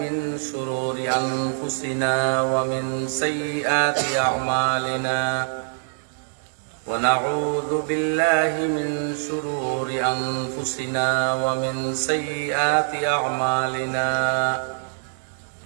من شرور أنفسنا ومن سيئات أعمالنا ونعوذ بالله من شرور أنفسنا ومن سيئات أعمالنا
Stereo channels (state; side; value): silent; left; digital silence